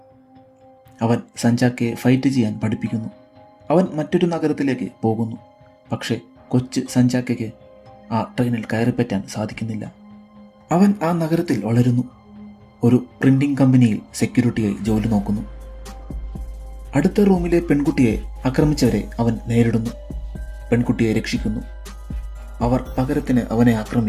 അവൻ സഞ്ചാക്കയെ ഫൈറ്റ് ചെയ്യാൻ പഠിപ്പിക്കുന്നു. അവൻ മറ്റൊരു നഗരത്തിലേക്ക് പോകുന്നു. പക്ഷേ കൊച്ചു സഞ്ചാക്കയ്ക്ക് ആ ട്രെയിനിൽ കയറിപ്പറ്റാൻ സാധിക്കുന്നില്ല. അവൻ ആ നഗരത്തിൽ വളരുന്നു. ഒരു പ്രിന്റിംഗ് കമ്പനിയിൽ സെക്യൂരിറ്റിയായി ജോലി നോക്കുന്നു. അടുത്ത റൂമിലെ പെൺകുട്ടിയെ ആക്രമിച്ചവരെ അവൻ നേരിടുന്നു. പെൺകുട്ടിയെ രക്ഷിക്കുന്നു. അവർ പകരത്തിന് അവനെ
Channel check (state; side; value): identical; both; correlation 1.00